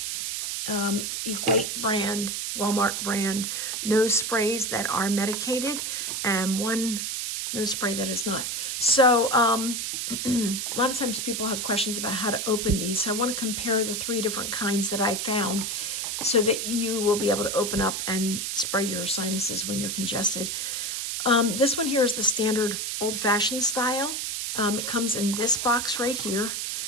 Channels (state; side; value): noise; right; hiss, 2 dB below the sound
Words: Equate brand, Walmart brand nose sprays that are medicated, and 1 nose spray that is not. So a lot of times people have questions about how to open these, so I want to compare the 3 different kinds that I found so that you will be able to open up and spray your sinuses when you're congested. This one here is the standard old-fashioned style. It comes in this box right here,